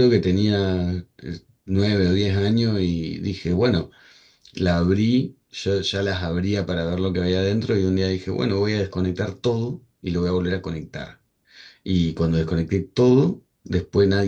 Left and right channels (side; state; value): both; identical; correlation 1.00